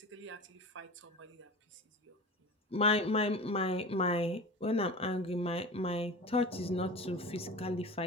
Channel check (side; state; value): both; normal; correlation 0.33